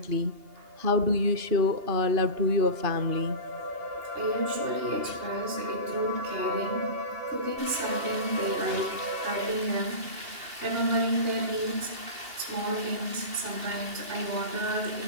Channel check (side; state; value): left; late; 2.8 ms